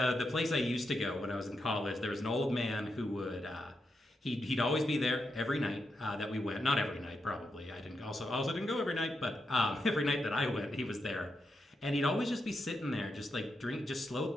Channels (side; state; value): both; normal; correlation 0.85